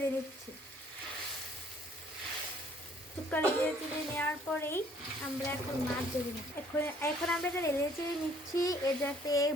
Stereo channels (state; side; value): normal; both; correlation 0.60